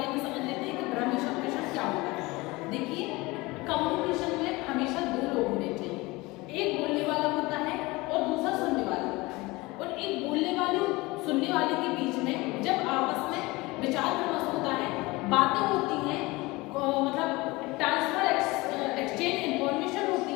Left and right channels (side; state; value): right; quieter; 22.3 dB